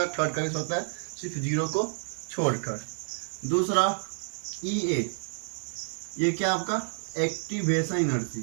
थर्ड का भी हो सकता है, सिर्फ जीरो को छोड़कर। दूसरा EA, ये क्या आपका activation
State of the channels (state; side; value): silent; left; digital silence